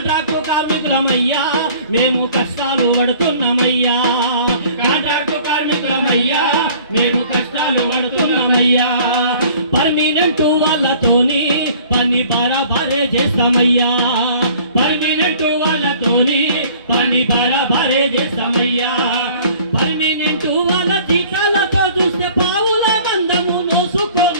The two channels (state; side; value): inverted; both; correlation -0.51